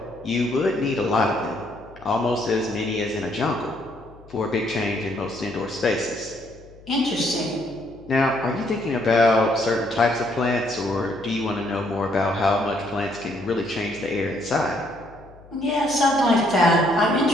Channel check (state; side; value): noise; left; hum, 23 dB below the sound